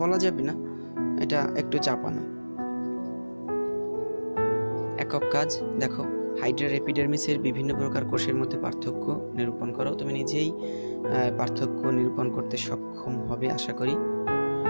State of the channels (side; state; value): both; inverted; correlation -1.00